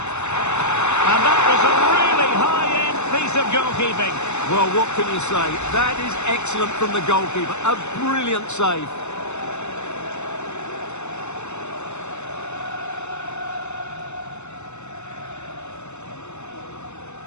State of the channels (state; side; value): late; right; 0.82 ms